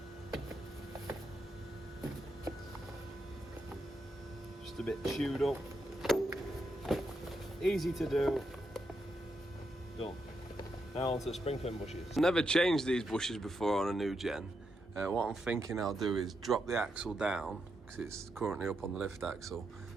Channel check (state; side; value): normal; both; correlation 0.83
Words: Just a bit chewed up. Easy to do. Done. Now onto the spring pin bushes. Never changed these bushes before on a new gen. What I'm thinking I'll do is drop the axle down, because it's currently up on the lift axle.